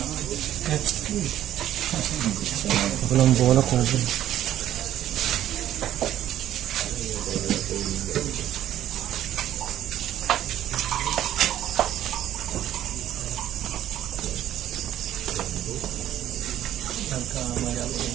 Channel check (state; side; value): quieter; left; 12.1 dB